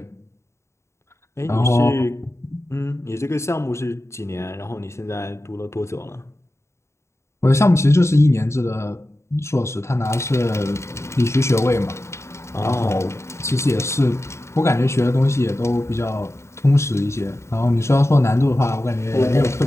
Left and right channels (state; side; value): late; right; 0.13 ms